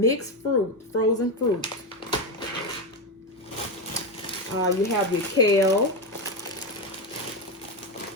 fruit, frozen fruit. You have your kale.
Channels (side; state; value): both; normal; correlation 0.12